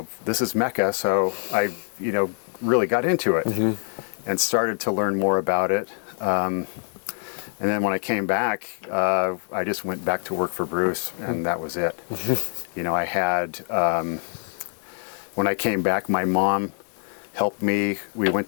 Mecca. So I, really got into it mm-hmm. and started to learn more about it. And then when I came back, I just went back to work for Bruce, and that was it. Mm-hmm. I had, when I came back, my mom helped me. We went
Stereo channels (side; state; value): right; silent; 55 dB below the other